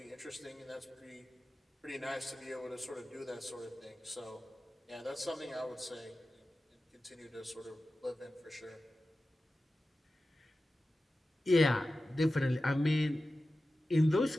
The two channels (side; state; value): both; normal; correlation 0.94